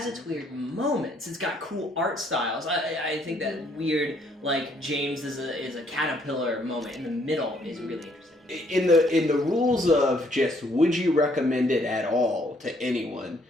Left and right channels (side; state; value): both; normal; correlation 0.67